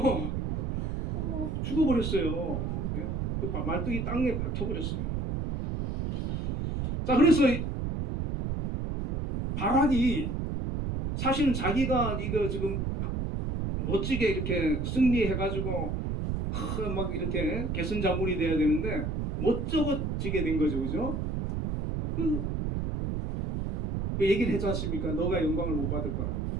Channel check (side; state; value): right; noise; rumble, 2 dB below the sound